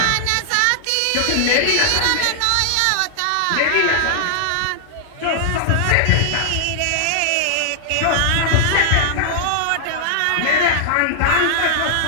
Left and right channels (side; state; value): both; different; correlation -0.01